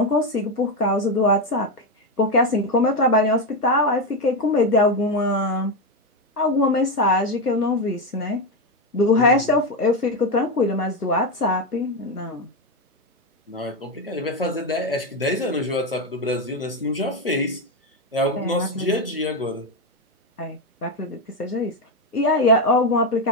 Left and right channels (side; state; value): both; normal; correlation 0.09